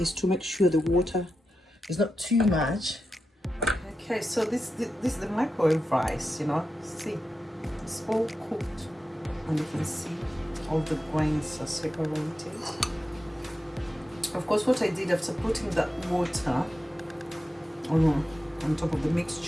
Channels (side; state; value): both; normal; correlation 0.90